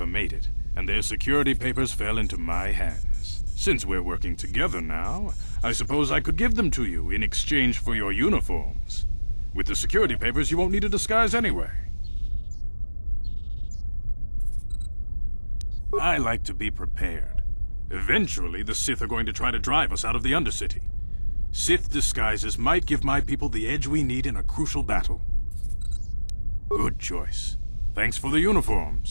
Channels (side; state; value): both; inverted; correlation -1.00